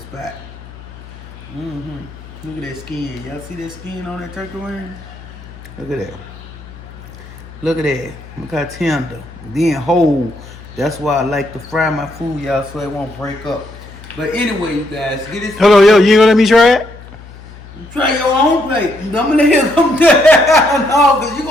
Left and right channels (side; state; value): left; noise; hum, 18 dB below the sound